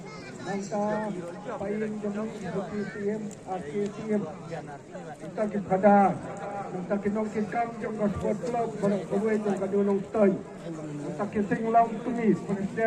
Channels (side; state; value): both; identical; correlation 1.00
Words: mangka paling yung KTM KTM kita kipada mangka kinong kikam yung sport club barang kawin yung kadulong toy mangka kising lang tumis